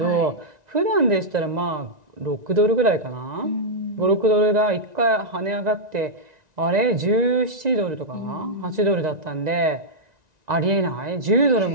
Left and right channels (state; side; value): late; left; 1.9 ms